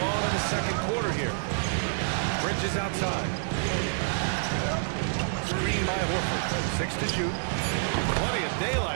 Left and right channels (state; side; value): silent; left; digital silence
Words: Bridges outside. Screen by Horford. 6 to shoot. Plenty of